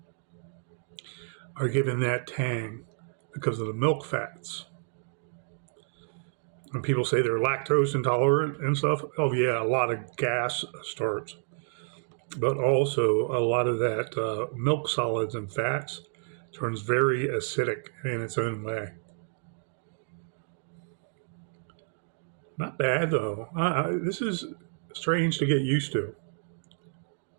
are giving that tang because of the milk fats. And people say they're lactose intolerant and stuff. Oh, yeah, a lot of gas starts. But also a lot of that milk solids and fats turns very acidic in its own way. Not bad, though. This is strange to get used to.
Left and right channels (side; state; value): left; silent; digital silence